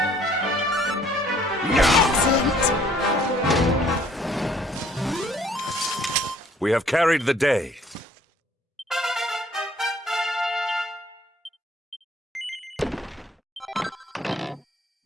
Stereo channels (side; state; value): both; normal; correlation 0.59